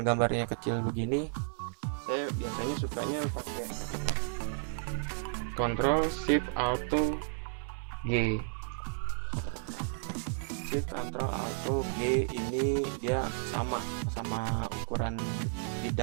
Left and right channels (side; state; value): left; silent; 56 dB below the other